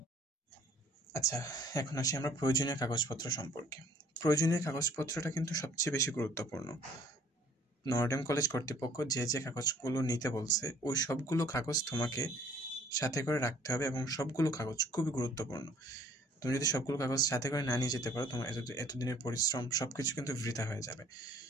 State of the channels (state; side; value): normal; both; correlation 0.57